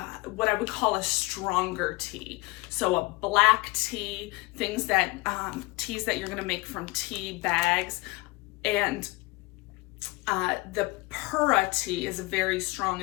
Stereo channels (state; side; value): quieter; right; 23.9 dB